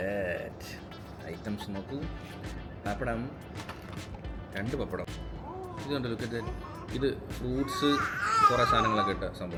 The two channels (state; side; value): identical; both; correlation 1.00